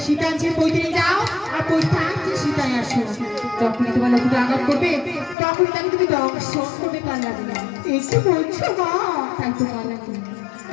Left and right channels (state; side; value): drops out; right; at 5.4 s